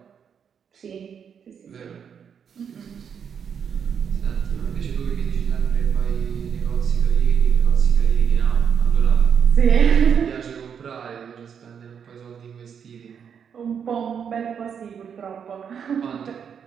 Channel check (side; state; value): left; quieter; 7.4 dB